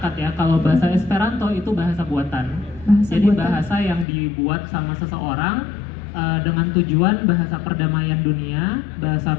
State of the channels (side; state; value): right; drops out; at 4.0 s